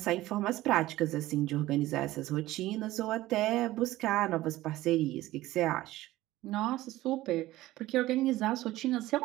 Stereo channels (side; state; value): left; quieter; 16.6 dB